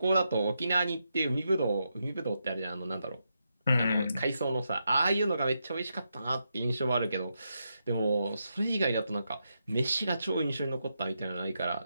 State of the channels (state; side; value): inverted; both; correlation -0.84